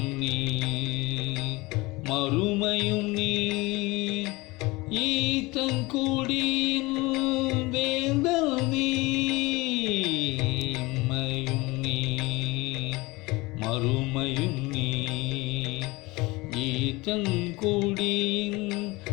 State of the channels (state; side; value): quieter; right; 22.6 dB